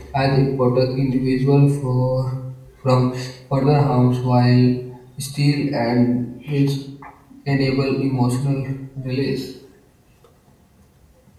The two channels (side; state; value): both; identical; correlation 1.00